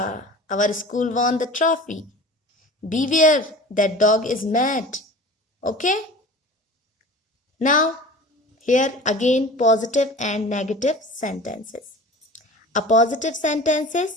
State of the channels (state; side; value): normal; both; correlation 0.39